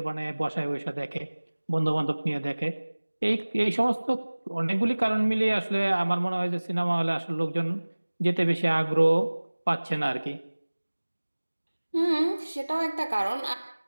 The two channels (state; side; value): inverted; both; correlation -1.00